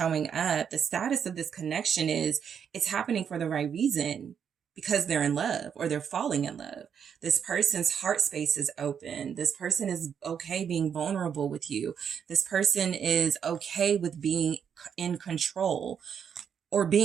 up, the status of this connection is it's happening for the right reason. Because they're in love or they're falling in love. This person's heart space is open. This person is okay being vulnerable with you. This person is okay with being in control or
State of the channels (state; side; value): quieter; left; 7.7 dB